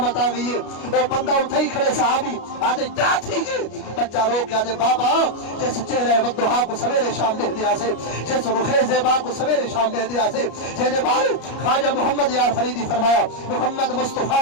آ گئی ہے۔ او بندہ اٹھے ہی کھڑے صحابی آدے کیا تھی گے؟ بچہ رو کے آدے بابا جس چہرے ودھا کو سویرے شام دے دیا سے، جس رخ زیبا کو سویرے شام دے دیا سے، جنے بار خواجہ محمد یار فریدی فرمایا محمد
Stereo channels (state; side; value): late; right; 33 ms